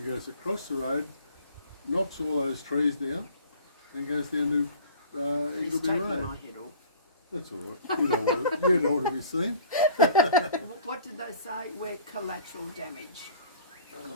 goes across the road, knocks all those trees down, and goes down to It's Eagleby taking Road. my head off. That's all right. You don't want to be seen. What did they say? We're collateral damage.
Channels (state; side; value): inverted; both; correlation -0.48